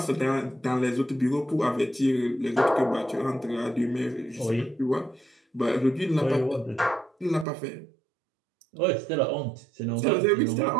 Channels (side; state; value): left; drops out; at 7.5 s